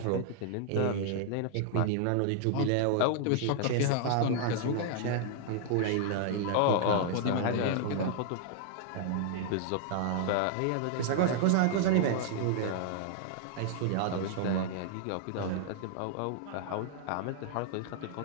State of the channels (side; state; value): both; different; correlation 0.00